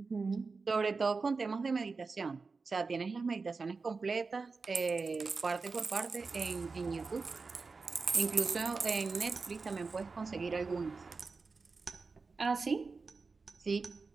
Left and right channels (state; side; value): quieter; left; 4.3 dB